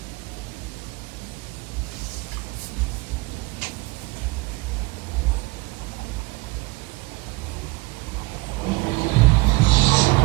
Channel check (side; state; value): left; quieter; 23.3 dB